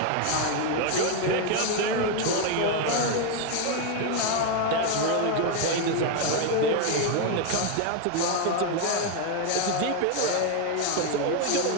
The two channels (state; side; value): different; both; correlation 0.01